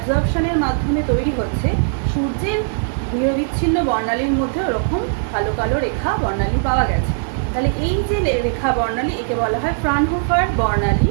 মাধ্যমে তৈরি হচ্ছে, সূর্যের নিরবিচ্ছিন্ন বর্ণালীর মধ্যে ওরকম কালো কালো রেখা বর্ণালী পাওয়া গেছে। তাহলে এই যে রেখা বর্ণালী, একে বলা হয় ফ্রানহোফার বর্ণালী,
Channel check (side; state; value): left; silent; 59 dB below the other